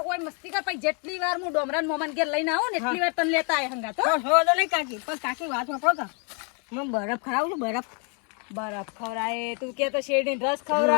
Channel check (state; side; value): quieter; right; 37.3 dB